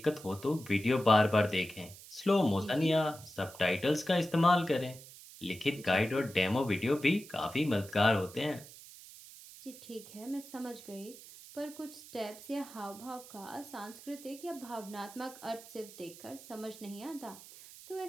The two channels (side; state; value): right; noise; hiss, 17 dB below the sound